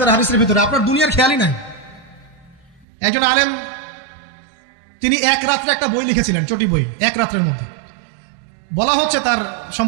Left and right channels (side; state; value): left; drops out; at 2.9 s